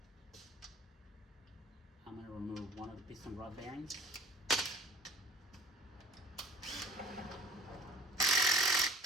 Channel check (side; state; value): both; normal; correlation 0.47